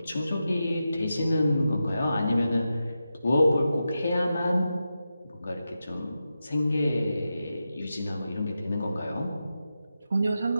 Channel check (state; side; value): inverted; both; correlation -0.90